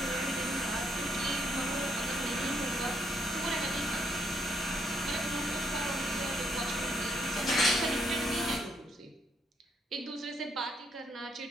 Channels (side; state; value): both; normal; correlation 0.74